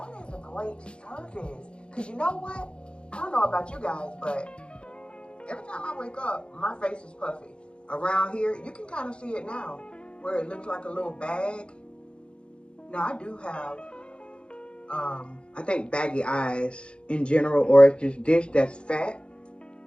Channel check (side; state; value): right; late; 0.056 ms